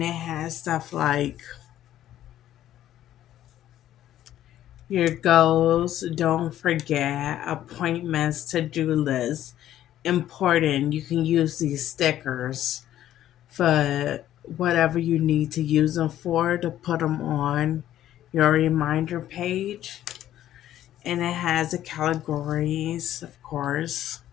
it has stuff like your goals, don't forget, appointments, to-do lists. Important. You can use these stickers for whatever you need to use them for, to put them on your reminder page. And it has the categories, of course,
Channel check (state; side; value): quieter; right; 12.4 dB